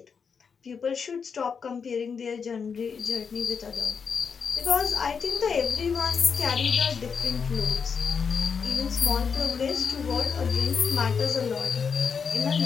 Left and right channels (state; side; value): quieter; right; 6.1 dB